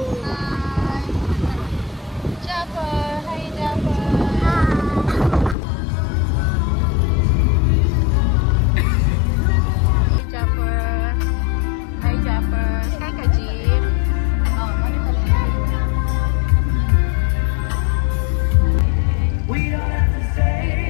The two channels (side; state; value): right; drops out; at 5.6 s